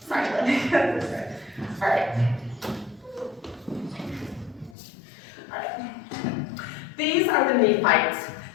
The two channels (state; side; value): drops out; right; at 4.8 s